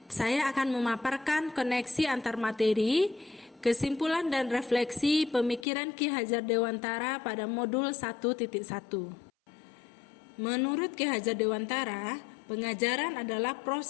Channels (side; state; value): right; drops out; at 5.7 s